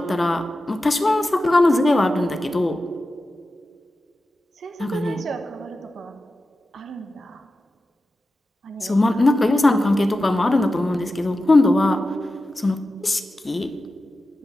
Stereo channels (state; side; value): normal; both; correlation 0.93